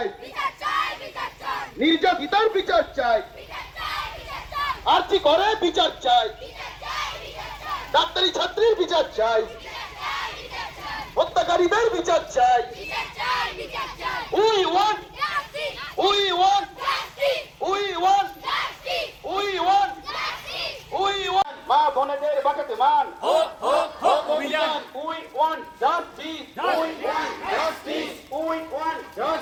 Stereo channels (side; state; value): both; identical; correlation 1.00